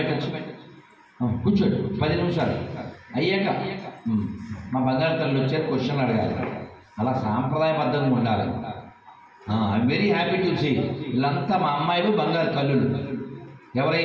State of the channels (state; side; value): identical; both; correlation 1.00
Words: కూర్చోండి 10 నిమిషాలు అయ్యాక మా బంగారు తల్లి వచ్చారు, క్వశ్చన్లు అడగాలి. అలా సాంప్రదాయబద్ధంగా ఉండాలి. I'm very happy to see వీళ్ళంతా మా అమ్మాయిలు బంగారు తల్లులు.